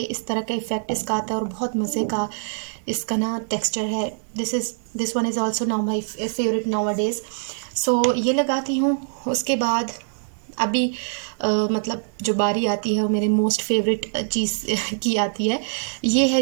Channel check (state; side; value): silent; left; 63 dB below the other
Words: इस तरह का इफ़ेक्ट इसका आता है और बहुत मज़े का इसका ना टेक्सचर है। This one is also now my favourite nowadays. So ये लगाती हूँ। उसके बाद अभी मतलब जो बारी आती है वो मेरे मोस्ट फेवरेट चीज़ की आती है। ये है